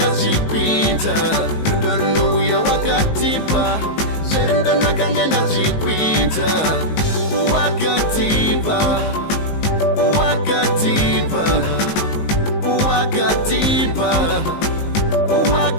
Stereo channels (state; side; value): late; right; 19 ms